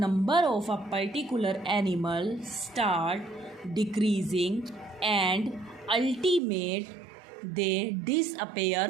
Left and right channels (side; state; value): left; drops out; at 6.4 s